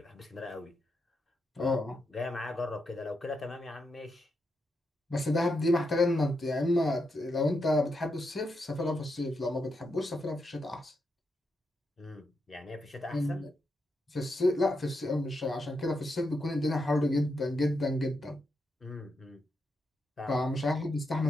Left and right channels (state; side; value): normal; both; correlation 0.83